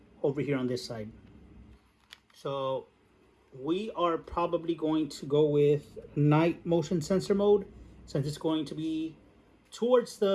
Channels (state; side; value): identical; both; correlation 1.00